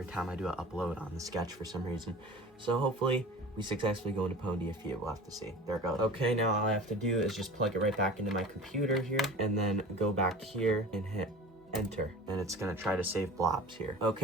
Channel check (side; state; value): both; normal; correlation 0.38